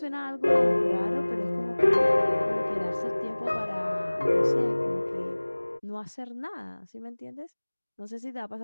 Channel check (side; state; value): both; inverted; correlation -1.00